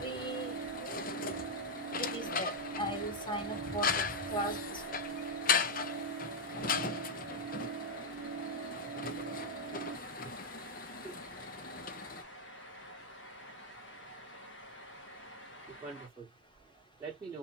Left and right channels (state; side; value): normal; both; correlation -0.01